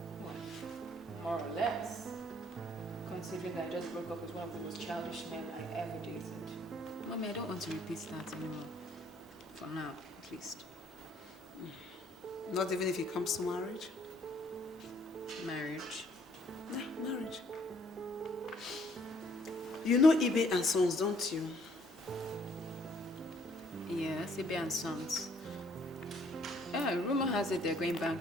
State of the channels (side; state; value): both; normal; correlation 0.63